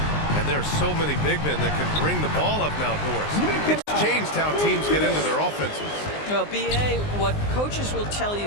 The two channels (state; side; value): late; right; 19 ms